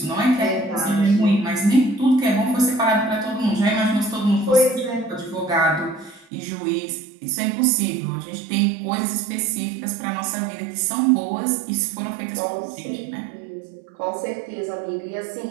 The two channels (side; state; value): left; drops out; at 6.2 s